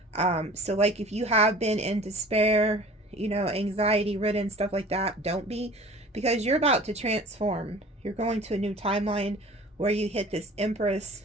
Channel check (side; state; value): both; normal; correlation 0.44